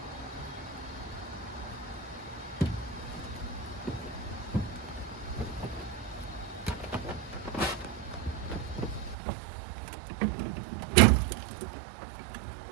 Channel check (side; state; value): left; drops out; at 9.2 s